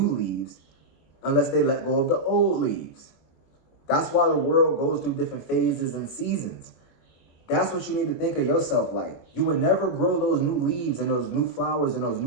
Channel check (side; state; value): right; late; 23 ms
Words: leaves unless they let go of the old leaves. That's why the world goes through different phases and seasons. That's what you need to think of yourself like. You would never grow those new leaves and those new flowers and those